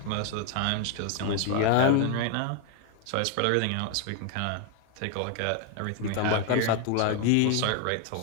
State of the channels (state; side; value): different; both; correlation 0.00